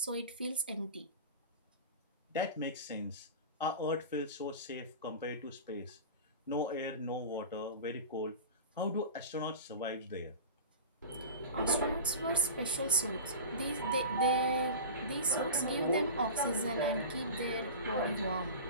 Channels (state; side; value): inverted; both; correlation -0.30